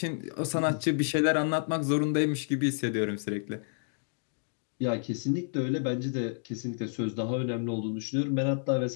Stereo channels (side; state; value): right; silent; digital silence